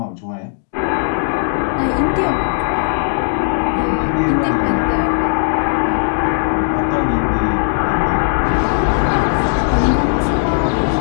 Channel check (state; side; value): silent; right; digital silence